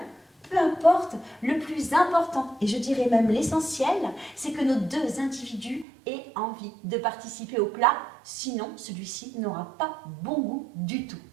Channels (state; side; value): drops out; left; at 5.9 s